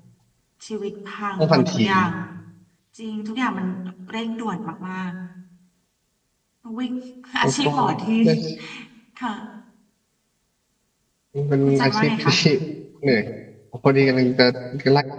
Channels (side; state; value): both; identical; correlation 1.00